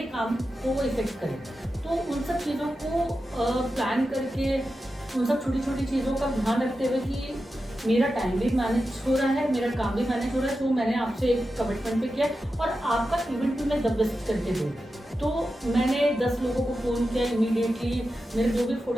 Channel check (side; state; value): both; normal; correlation 0.91